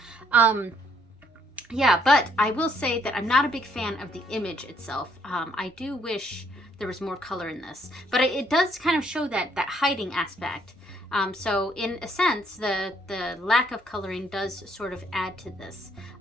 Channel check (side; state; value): both; normal; correlation 0.68